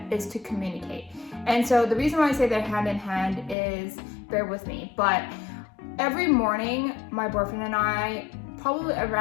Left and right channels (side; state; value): right; drops out; at 3.6 s